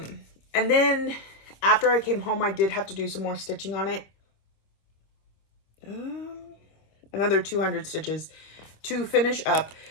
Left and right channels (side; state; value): right; late; 26 ms